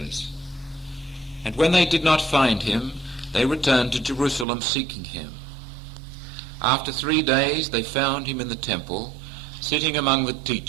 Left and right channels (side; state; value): left; drops out; at 4.5 s